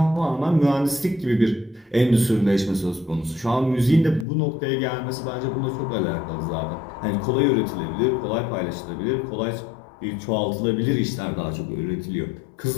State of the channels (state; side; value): drops out; right; at 4.2 s